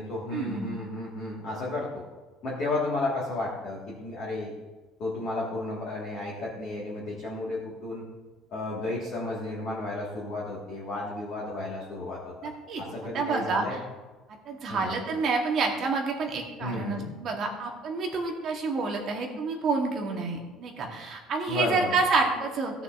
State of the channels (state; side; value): normal; both; correlation 0.56